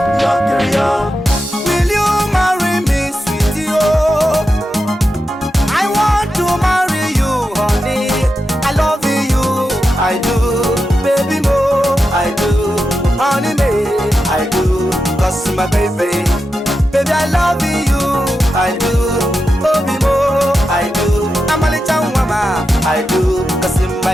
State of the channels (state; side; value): normal; both; correlation 0.89